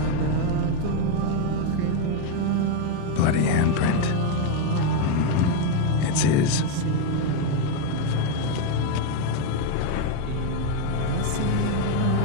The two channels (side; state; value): both; different; correlation 0.01